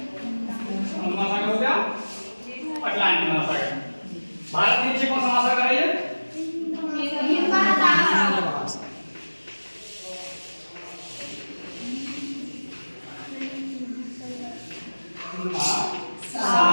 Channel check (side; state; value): both; inverted; correlation -1.00